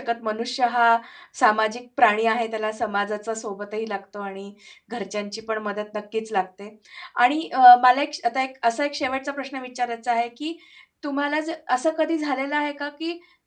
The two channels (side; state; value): both; identical; correlation 1.00